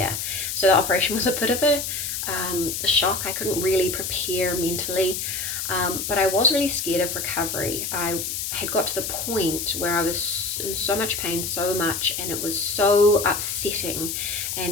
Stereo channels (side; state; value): left; noise; hiss, 3 dB below the sound